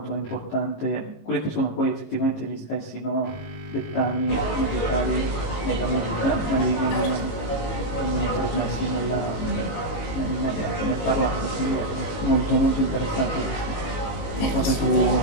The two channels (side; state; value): right; late; 19 ms